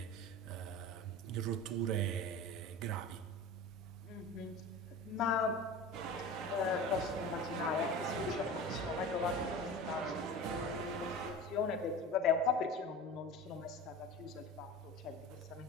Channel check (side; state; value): both; normal; correlation 0.34